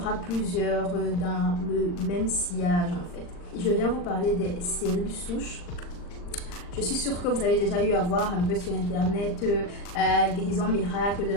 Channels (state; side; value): late; right; 40 ms